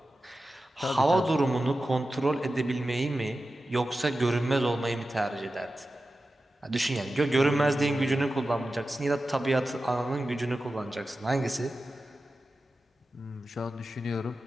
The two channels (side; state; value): both; normal; correlation 0.93